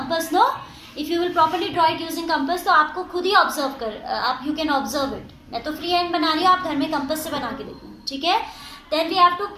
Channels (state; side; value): identical; both; correlation 1.00